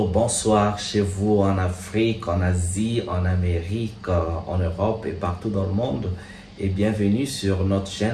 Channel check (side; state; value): both; identical; correlation 1.00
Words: bonjour, bonsoir chez vous en Afrique, en Asie, en Amérique, en Europe et partout dans le monde. Et bienvenue sur notre